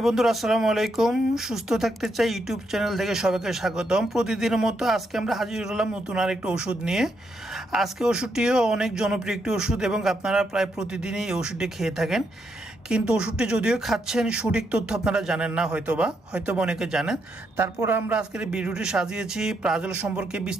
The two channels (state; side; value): normal; both; correlation 0.79